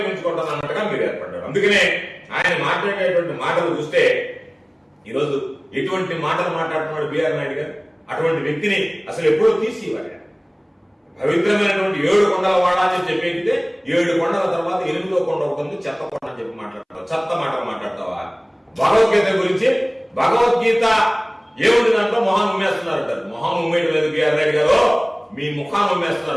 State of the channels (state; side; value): identical; both; correlation 1.00